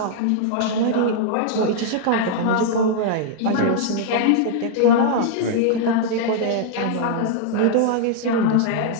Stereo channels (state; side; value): different; both; correlation -0.01